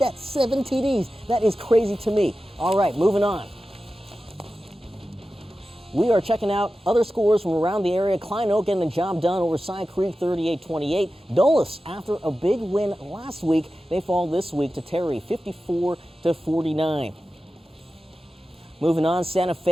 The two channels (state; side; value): normal; both; correlation 0.94